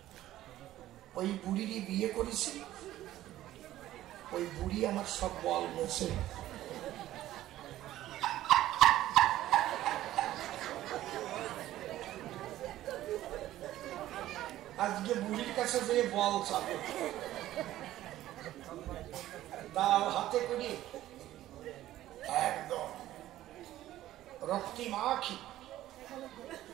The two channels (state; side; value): quieter; left; 14.2 dB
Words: ওই বুড়িরই বিয়ে করেছি, ওই বুড়ি আমার সব বল মেছে। আজকে বুড়ির কাছে যে বল চাবে, দাও হাতে করে একদম রক্তিমাখি,